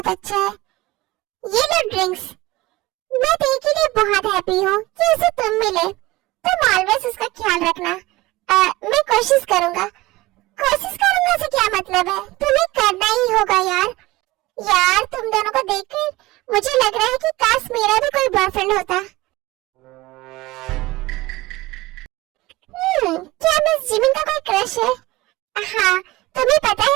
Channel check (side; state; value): left; quieter; 19.7 dB